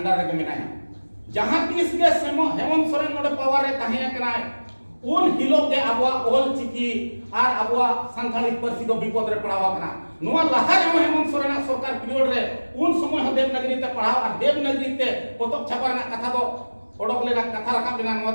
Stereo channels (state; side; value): inverted; both; correlation -1.00